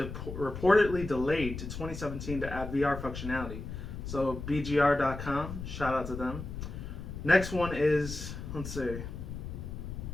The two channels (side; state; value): left; noise; rumble, 8 dB below the sound